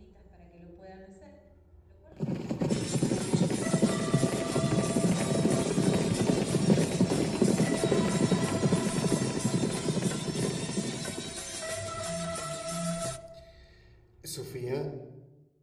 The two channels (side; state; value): both; identical; correlation 1.00